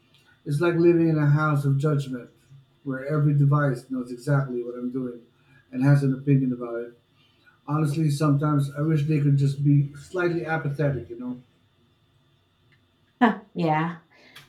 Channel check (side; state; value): both; identical; correlation 1.00